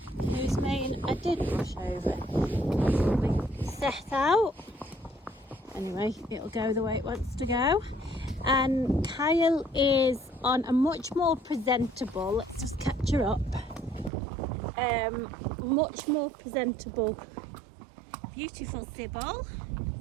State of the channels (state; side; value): drops out; left; at 14.1 s